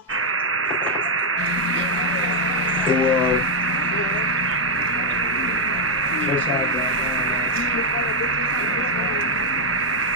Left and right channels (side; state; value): both; normal; correlation -0.02